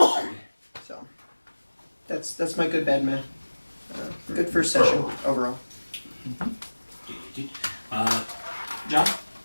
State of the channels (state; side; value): inverted; both; correlation -1.00